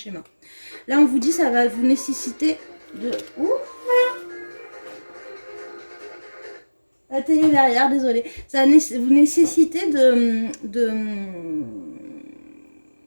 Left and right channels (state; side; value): inverted; both; correlation -1.00